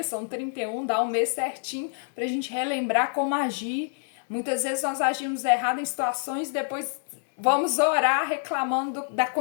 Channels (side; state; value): right; silent; 60 dB below the other